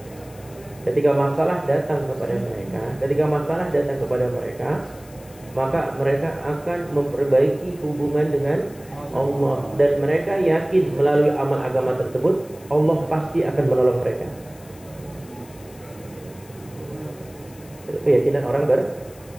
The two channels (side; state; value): left; noise; hiss, 24 dB below the sound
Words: ketika masalah datang kepada mereka, maka mereka akan memperbaiki hubungan dengan Allah, dan mereka yakin melalui amal agama tersebut Allah pasti akan menolong mereka. Itu keyakinan orang beriman.